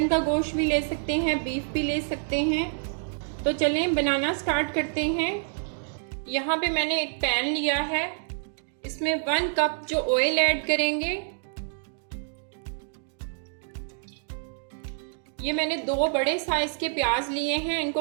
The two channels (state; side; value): silent; left; digital silence